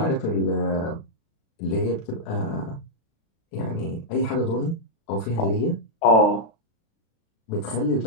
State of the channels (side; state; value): right; late; 36 ms